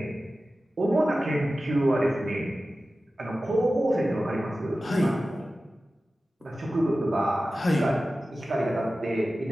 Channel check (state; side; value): normal; both; correlation 0.95